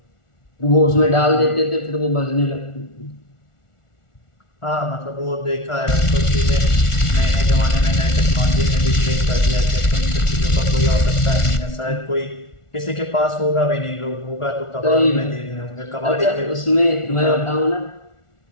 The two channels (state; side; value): late; right; 1.4 ms